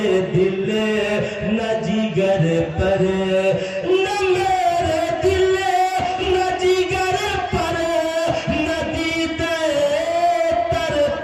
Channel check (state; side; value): identical; both; correlation 1.00